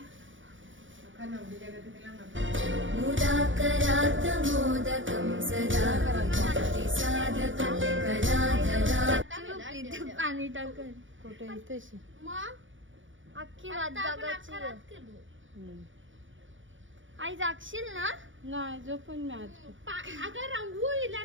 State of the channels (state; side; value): late; left; 0.56 ms